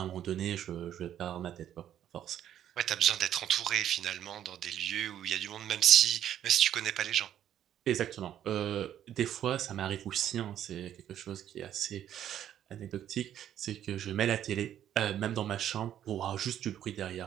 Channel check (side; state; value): left; quieter; 10.8 dB